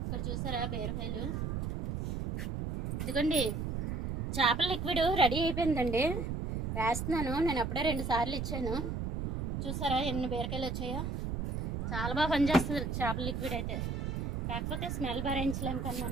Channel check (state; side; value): noise; right; rumble, 2 dB below the sound